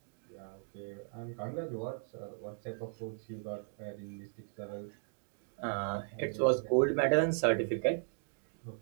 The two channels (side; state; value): left; silent; digital silence